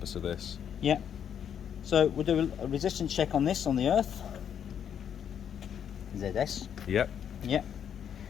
of this. Yeah. So we'll do a resistance check on this on the earth. ZS. Yep. Yep.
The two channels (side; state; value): right; quieter; 8.6 dB